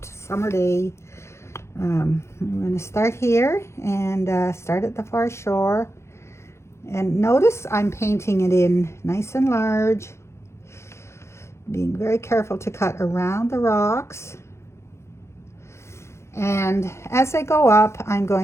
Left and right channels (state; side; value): late; right; 0.13 ms